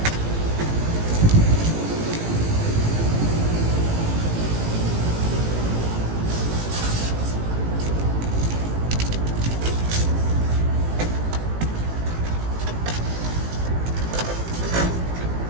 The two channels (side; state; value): left; late; 18 ms